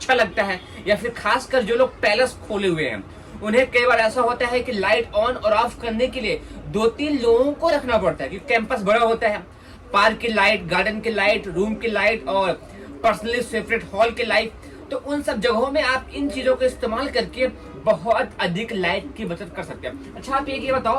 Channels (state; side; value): identical; both; correlation 1.00